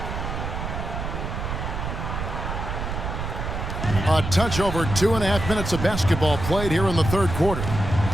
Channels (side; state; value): right; noise; rumble, 4 dB below the sound